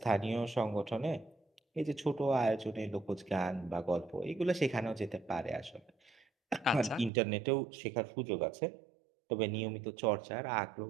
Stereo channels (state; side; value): drops out; left; at 7.1 s